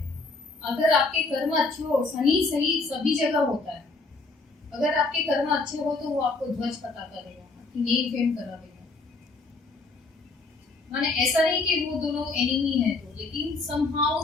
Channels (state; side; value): quieter; right; 3.6 dB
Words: अगर आपके कर्म अच्छे हो, शनि सही सभी जगह होता है, अगर आपके कर्म अच्छे हो तो वो आपको ध्वज पता करेगा, आपकी नेम फेम करा देगा। माने ऐसा नहीं कि वो दोनों एनिमी है तो, लेकिन समहाउ